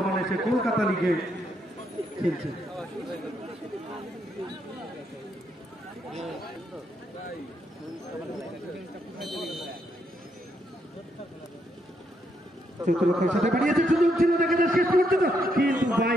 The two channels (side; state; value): both; normal; correlation 0.77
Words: সে কলকাতা লিগে খেলছে। চতুর্থের সাথে বাড়িয়েছে, সুযোগ ছিল, দেখা যায় শেষ করতে তো, কিন্তু